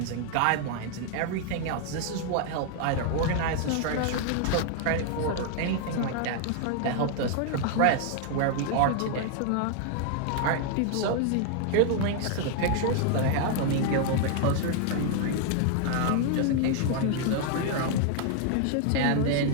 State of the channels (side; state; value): both; different; correlation 0.00